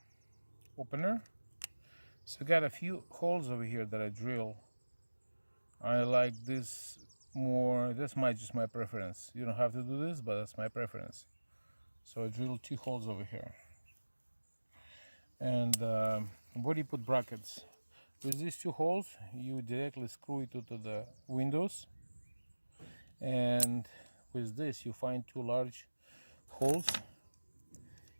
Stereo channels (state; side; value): inverted; both; correlation -1.00